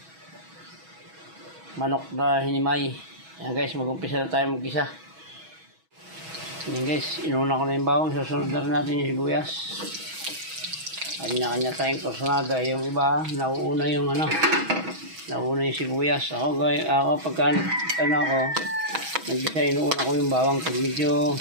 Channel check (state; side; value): late; left; 6.2 ms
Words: manok na hinimay. Yan guys, mag-umpisa na tayo mag-isa. Yan guys, inuna ko na yung bawang, susunod na rin natin yung sibuyas. Kanya-kanya tayong kursunada. Yung iba, nauuna yung nauna yung sibuyas. Ako pagka nag-isa, inuuna ko yung bawang. Pag medyo